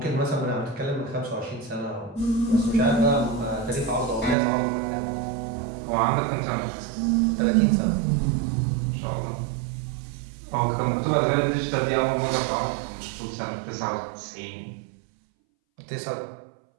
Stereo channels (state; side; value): drops out; left; at 4.4 s